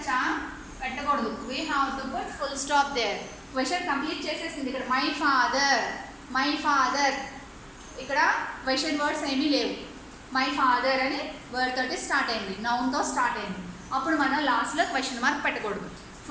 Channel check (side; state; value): both; identical; correlation 1.00